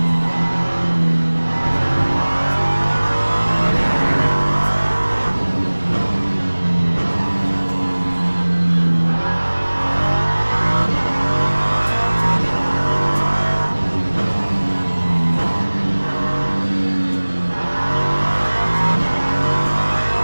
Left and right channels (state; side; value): inverted; both; correlation -1.00